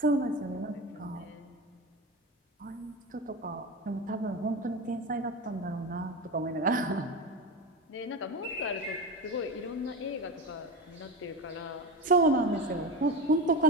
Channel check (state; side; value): normal; both; correlation 0.23